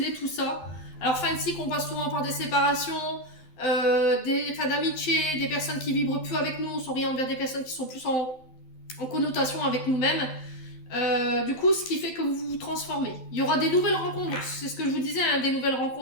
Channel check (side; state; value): right; late; 12 ms